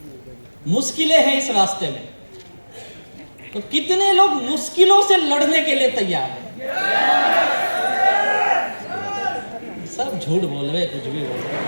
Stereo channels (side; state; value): both; inverted; correlation -1.00